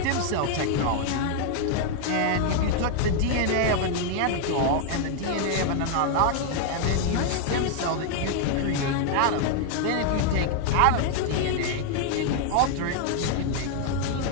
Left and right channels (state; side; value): different; both; correlation 0.00